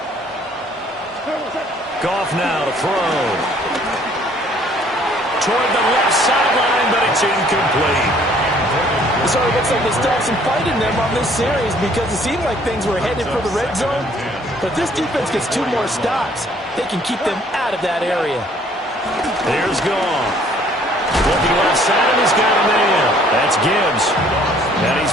Goff now to throw. Toward the left sideline, but it's incomplete. So it looks like they still have some fight in them on this series because it seemed like things were headed for the red zone. But if this defense gets 2 more stops, they can keep them out of that area. There's Goff. Looking left side, and he's got a man. That's Gibbs. And he's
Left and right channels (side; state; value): both; normal; correlation 0.59